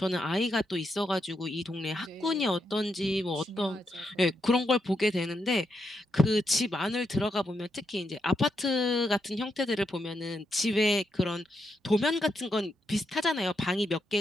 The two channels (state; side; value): normal; both; correlation 0.82